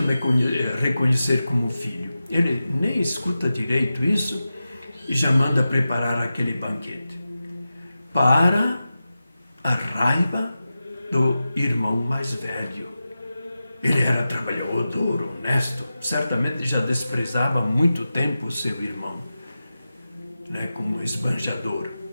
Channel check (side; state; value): both; inverted; correlation -0.93